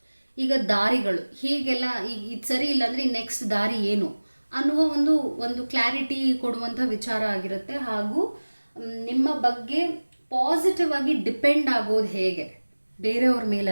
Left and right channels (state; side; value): inverted; both; correlation -1.00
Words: ಈಗ ದಾರಿಗಳು ಹೀಗೆಲ್ಲ, ಈಗ ಇದು ಸರಿ ಇಲ್ಲ ಅಂದರೆ ನೆಕ್ಸ್ಟ್ ದಾರಿ ಏನು ಅನ್ನುವ ಒಂದು ಕ್ಲಾರಿಟಿ ಕೊಡುವಂಥ ವಿಚಾರ ಆಗಿರುತ್ತೆ. ಹಾಗೂ ನಿಮ್ಮ ಬಗ್ಗೆ ಪಾಸಿಟಿವ್ ಆಗಿ ಡಿಪೆಂಡ್ ಆಗೋದು ಹೇಗೆ, ಬೇರೆಯವ್ರ